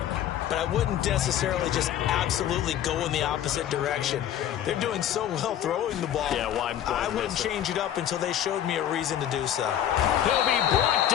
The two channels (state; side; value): quieter; right; 10.8 dB